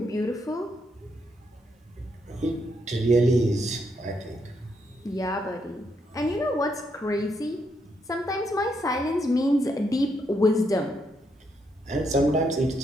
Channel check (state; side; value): normal; both; correlation 0.77